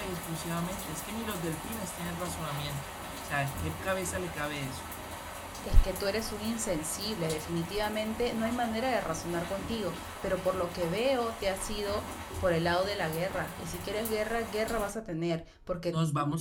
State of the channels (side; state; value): both; identical; correlation 1.00